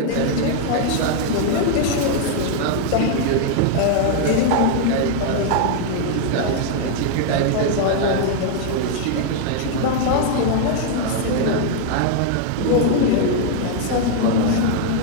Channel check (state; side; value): different; both; correlation 0.00